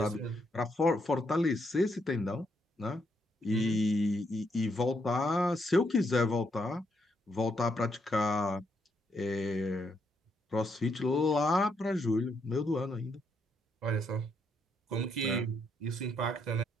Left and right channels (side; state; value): both; normal; correlation 0.77